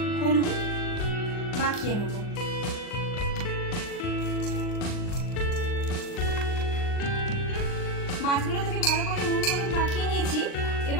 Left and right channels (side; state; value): right; late; 39 ms